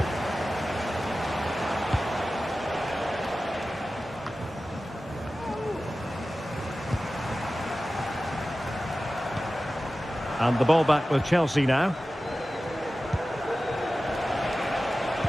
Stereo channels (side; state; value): both; normal; correlation 0.95